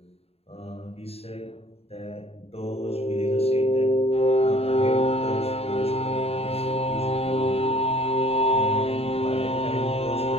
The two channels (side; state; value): right; late; 0.29 ms